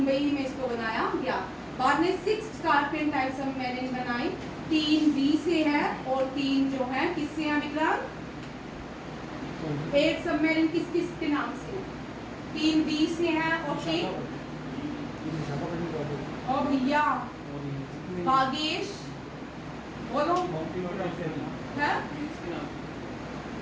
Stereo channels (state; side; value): identical; both; correlation 1.00